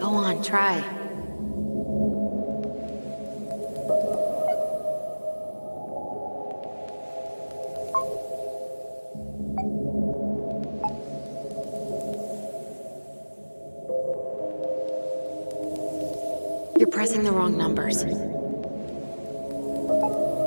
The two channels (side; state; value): both; inverted; correlation -1.00